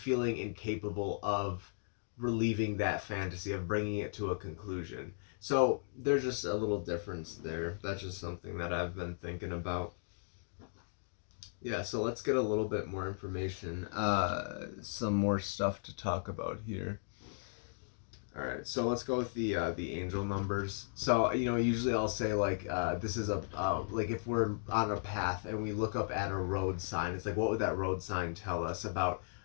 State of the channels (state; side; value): silent; right; digital silence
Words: incapable of relieving that fantasy, of bringing it to a conclusion. So there's just a little difference there. That's just something that I've been thinking about. Yeah, so let's get a little bit more information. Some more stuff to talk about here. All right, so let's go with the angel numbers. So usually I'll say like this is a like if we're on a path and we look up at a road sign, it's like what would that road sign tell us about